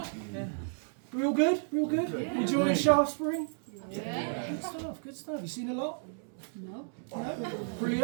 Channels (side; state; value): left; silent; 56 dB below the other